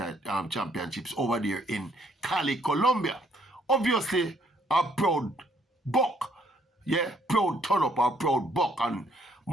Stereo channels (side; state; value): both; normal; correlation 0.67